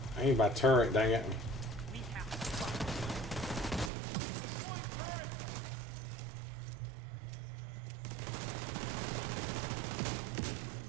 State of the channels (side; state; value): left; drops out; at 3.9 s